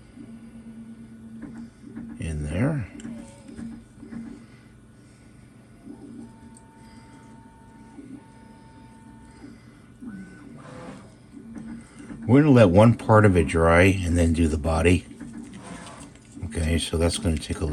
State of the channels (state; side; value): identical; both; correlation 1.00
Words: in there. We're gonna let one part of it dry and then do the body. Okay, so that's gonna take a